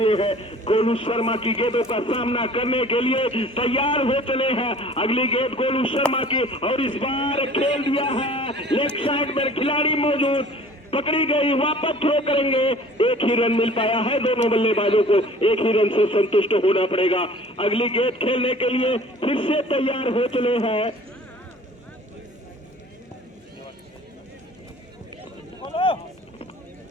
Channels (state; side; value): normal; both; correlation 0.48